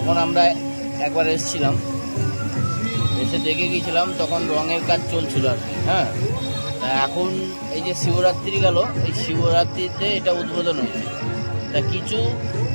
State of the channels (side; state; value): both; inverted; correlation -1.00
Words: আমরা একবার এসেছিলাম, এসে দেখে গিয়েছিলাম, তখন রঙের কাজ চলছিল আর কি। হ্যাঁ, তা এখন এই যে শিবরাত্রি গেল, এই শিবরাত্রিতে এটা উদ্বোধন হয়েছে। তা কিছু